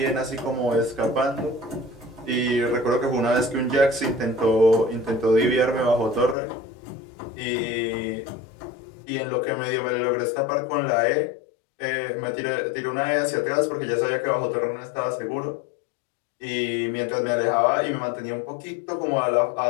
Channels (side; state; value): right; drops out; at 6.4 s